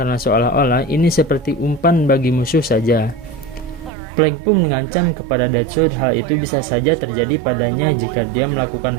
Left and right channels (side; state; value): left; drops out; at 3.9 s